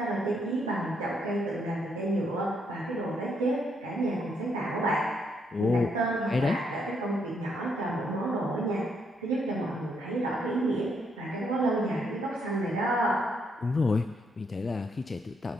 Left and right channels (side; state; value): both; normal; correlation 0.74